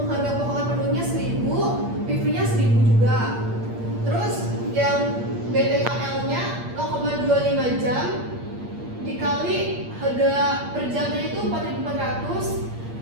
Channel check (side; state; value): left; late; 8.6 ms